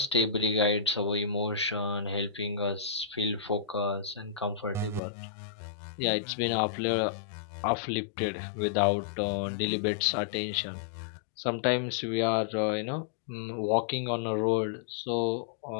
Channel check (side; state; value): right; drops out; at 5.0 s